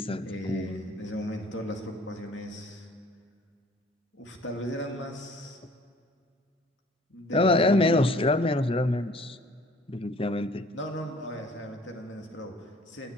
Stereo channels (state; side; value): normal; both; correlation 0.53